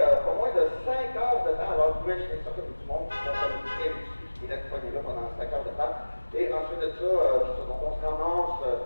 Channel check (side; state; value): both; inverted; correlation -1.00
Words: pas moins de 5 heures de temps. Alors, vous pouvez imaginer ça comme du monde qui sont très dessus, qui restent pognés là pendant 5 heures de temps. Et ensuite de ça, donc on se ramasse